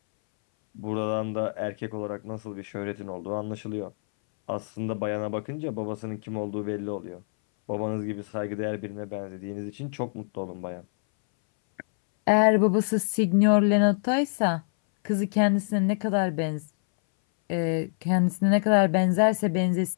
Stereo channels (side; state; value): right; silent; 61 dB below the other